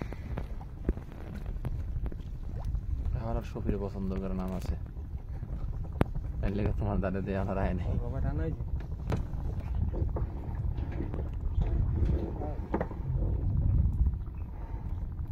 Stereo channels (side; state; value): both; identical; correlation 1.00